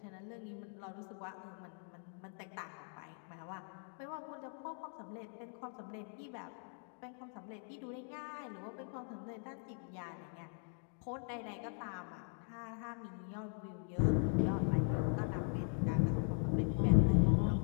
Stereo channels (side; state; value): right; silent; 51 dB below the other